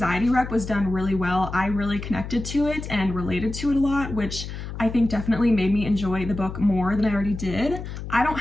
rep was done really well. I really connected to it and related to it a lot, which I think definitely made me enjoy the book more than I already did. I don't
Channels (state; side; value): noise; left; hum, 8 dB below the sound